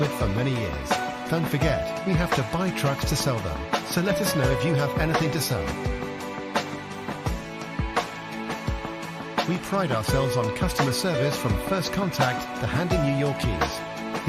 with for many years. Don't forget, we have to buy trucks to sell them, so let us know if you have anything to sell. We pride ourselves on customer service from first contact to handing you your keys.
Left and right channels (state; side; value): identical; both; correlation 1.00